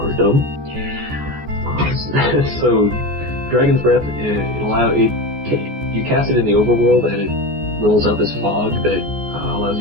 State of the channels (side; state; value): left; late; 14 ms